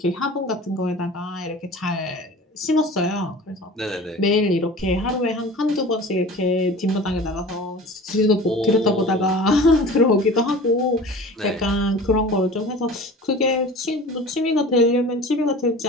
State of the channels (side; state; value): both; normal; correlation 0.39